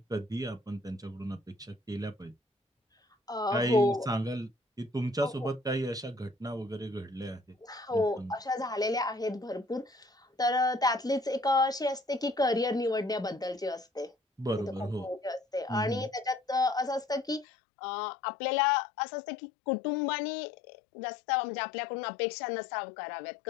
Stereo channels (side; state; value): right; drops out; at 17.4 s